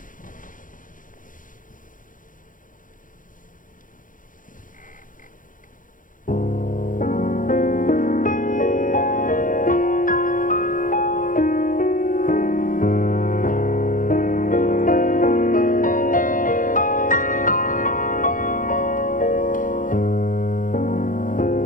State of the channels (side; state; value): right; late; 0.39 ms